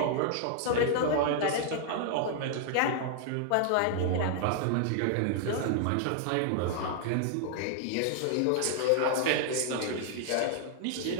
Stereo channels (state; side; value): different; both; correlation 0.00